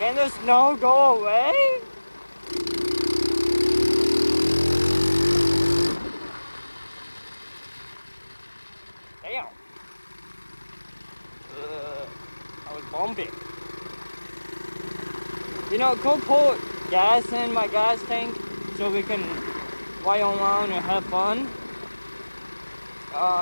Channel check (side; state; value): both; inverted; correlation -1.00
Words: the snow go away? Damn. I was bumping. You know, go put gas in my gas tank so we can ride around and have fun.